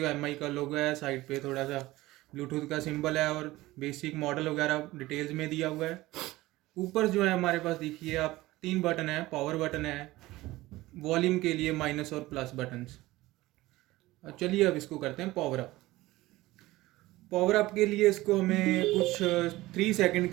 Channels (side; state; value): left; quieter; 18.3 dB